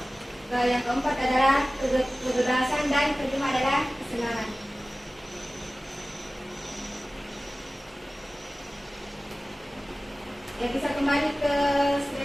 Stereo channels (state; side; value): normal; both; correlation 0.97